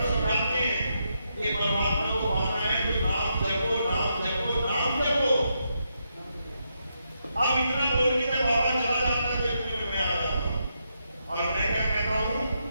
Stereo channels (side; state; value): both; inverted; correlation -0.81